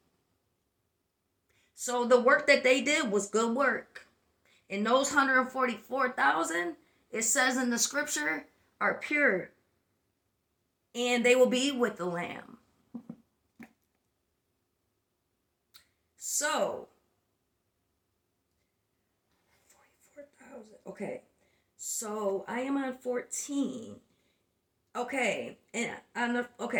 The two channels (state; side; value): identical; both; correlation 1.00